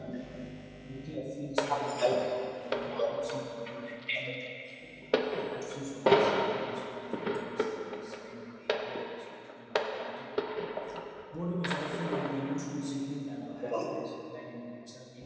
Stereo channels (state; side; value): identical; both; correlation 1.00